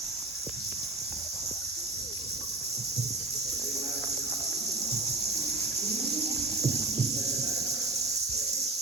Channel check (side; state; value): left; quieter; 3.2 dB